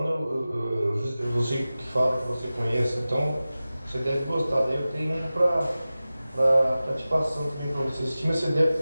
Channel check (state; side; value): inverted; both; correlation -0.96